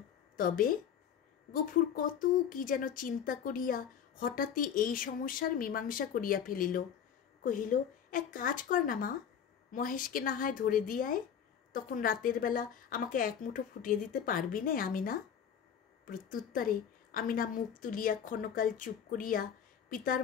তবে? গফুর কত কি যেন চিন্তা করিয়া হঠাৎই এই সমস্যার মীমাংসা করিয়া ফেলিল। কহিল, এক কাজ কর না মা, মহেশকে না হয় ধরে দিয়ায়, তখন রাতের বেলা আমাকে এক মুঠো ফুটিয়ে দিতে পারবি নে আমিনা। প্রত্যুত্তরে আমিনা মুখ তুলিয়া ক্ষণকাল চুপ করিয়া পিতার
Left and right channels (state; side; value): quieter; right; 8.3 dB